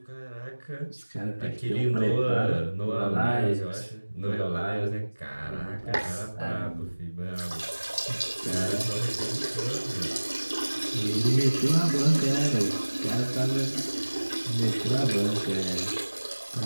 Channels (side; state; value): both; inverted; correlation -1.00